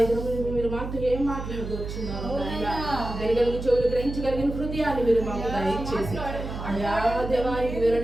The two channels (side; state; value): right; noise; hum, 7 dB below the sound